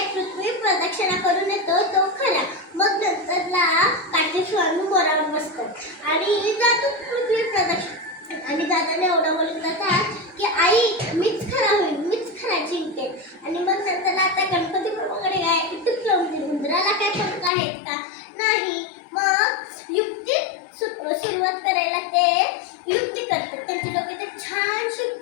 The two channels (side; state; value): right; drops out; at 17.5 s